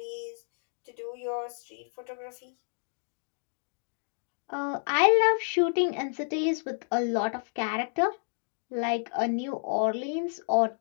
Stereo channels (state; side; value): silent; right; digital silence